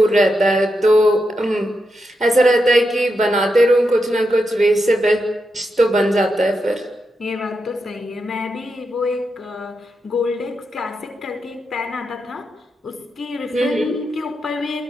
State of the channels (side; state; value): both; normal; correlation 0.85